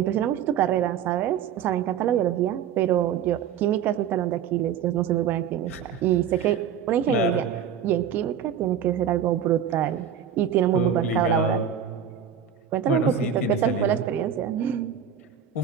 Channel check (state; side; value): quieter; left; 8.3 dB